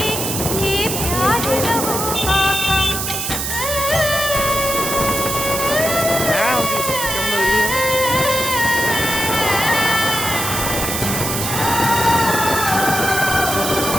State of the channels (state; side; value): noise; right; hiss, 2 dB below the sound